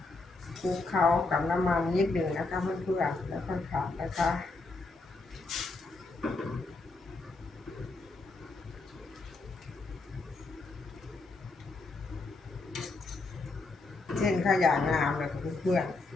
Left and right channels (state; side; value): quieter; right; 3.5 dB